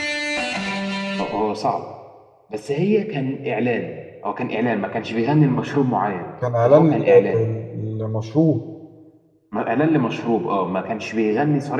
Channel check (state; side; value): identical; both; correlation 1.00